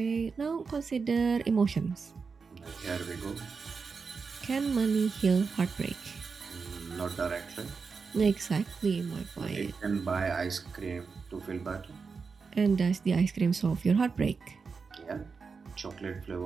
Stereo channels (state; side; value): quieter; left; 5.1 dB